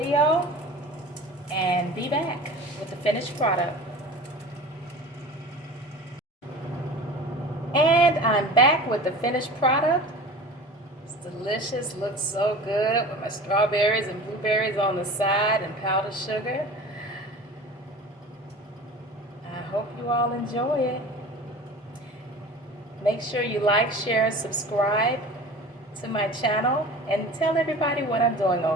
and be back with the finished product. And I'm back with the finished product. It's delicious, looks so good with my strawberries and blueberries on the side and powdered sugar. I hope you all enjoy it. Make sure you like, share, and subscribe to my channel and tell everybody what I'm doing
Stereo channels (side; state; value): both; normal; correlation 0.38